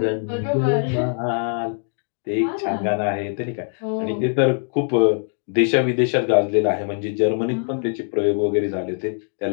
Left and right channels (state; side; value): silent; right; 60 dB below the other